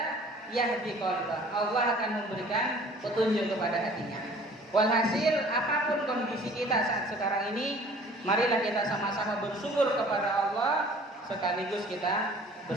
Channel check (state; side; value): normal; both; correlation 0.50